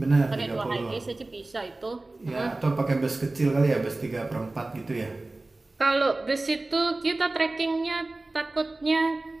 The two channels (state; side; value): quieter; left; 3.0 dB